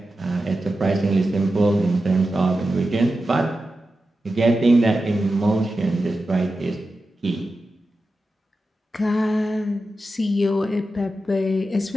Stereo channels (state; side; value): normal; both; correlation 0.91